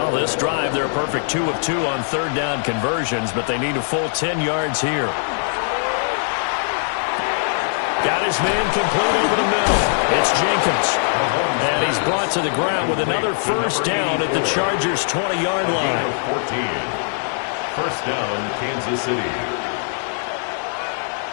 this drive, they're a perfect 2 of 2 on 3rd down conversions, but they need a full 10 yards here. Got his man complete over the middle. It's Jenkins. And he's brought to the ground with another 1st down at the Chargers' 20-yard line. 14. 1st down, Kansas City.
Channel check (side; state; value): right; silent; digital silence